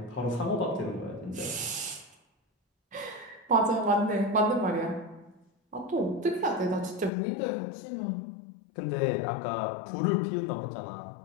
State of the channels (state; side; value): drops out; right; at 7.1 s